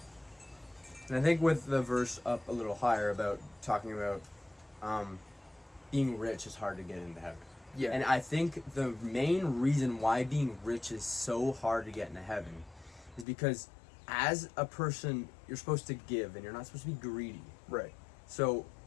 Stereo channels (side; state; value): right; drops out; at 13.2 s